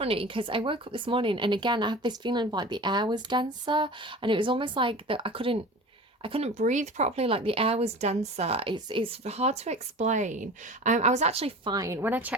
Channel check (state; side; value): normal; both; correlation 0.37